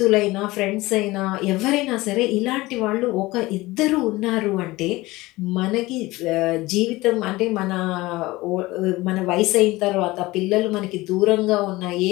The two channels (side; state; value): right; quieter; 19.9 dB